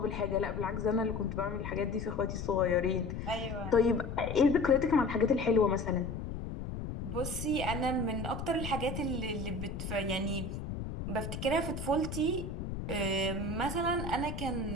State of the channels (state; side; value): noise; left; rumble, 6 dB below the sound